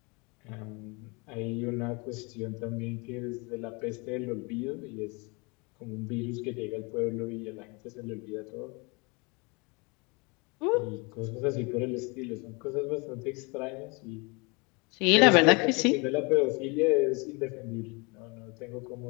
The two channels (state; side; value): quieter; right; 29.3 dB